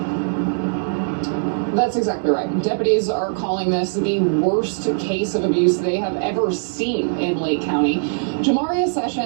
That's exactly right. Deputies are calling this the worst case of abuse they have ever seen in Lake County. Jamaria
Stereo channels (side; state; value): left; silent; digital silence